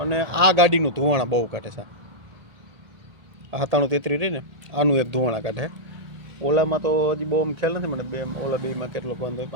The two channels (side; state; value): left; late; 1.8 ms